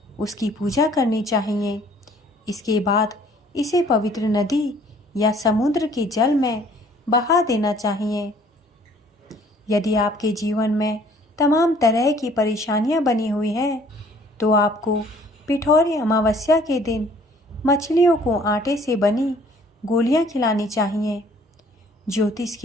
उसकी पूजा करनी चाहिए। इसके बाद इसे पवित्र नदी या समुद्र के जल में बहा देना चाहिए। यदि आपके जीवन में तमाम तरह की परेशानियां बनी हुई हैं तो आपको पिठौरी अमावस्या के दिन मछलियों को आटे से बनी गोलियां खिलानी चाहिए। ज्योतिष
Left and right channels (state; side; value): normal; both; correlation 0.57